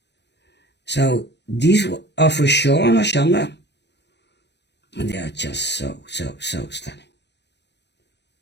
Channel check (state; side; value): late; right; 0.50 ms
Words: So these are for sure on Hoshanda. And they are just so stunning.